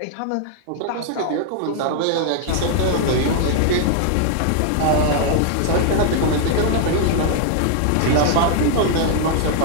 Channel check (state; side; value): different; both; correlation 0.00